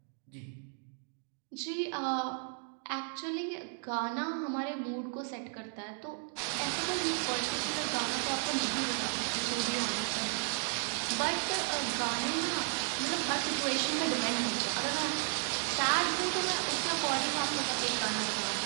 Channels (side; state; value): left; silent; 55 dB below the other